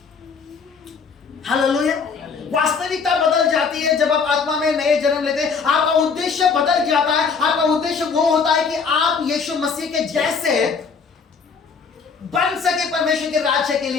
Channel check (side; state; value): right; quieter; 5.4 dB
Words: हालेलुया। वास्तविकता बदल जाती है जब आप आत्मा में नए जन्म लेते हैं। आपका उद्देश्य बदल जाता है। आपका उद्देश्य वो होता है कि आप यीशु मसीह के जैसे बन सके परमेश्वर के राज्य के